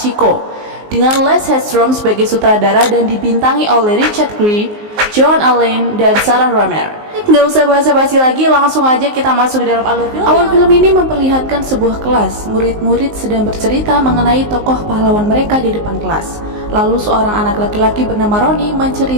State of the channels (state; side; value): late; left; 19 ms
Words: dengan Les Hedstrom sebagai sutradara dan dibintangi oleh Richard Gere, Joan Allen, dan Sarah Romer. Nggak usah basa-basi lagi, langsung aja kita masuk ke dalam alur film. Awal film ini memperlihatkan sebuah kelas. Murid-murid sedang bercerita mengenai tokoh pahlawan mereka di depan kelas. Lalu seorang anak laki-laki bernama Roni